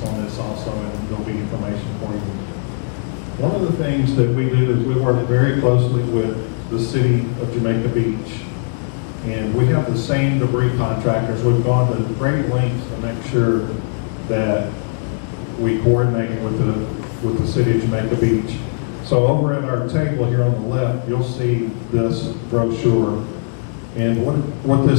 on this also, and there'll be information for you. One of the things that we do is we work very closely with the city of Jamaica Beach, and we have the same debris contractors. We've gone to great lengths to make sure that we coordinate with the city of Jamaica Beach. So over at our table here on the left, you'll see this brochure. And what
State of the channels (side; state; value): right; silent; digital silence